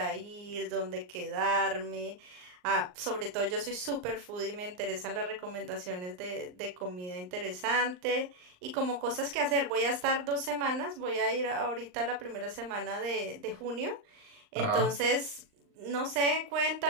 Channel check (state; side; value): late; left; 39 ms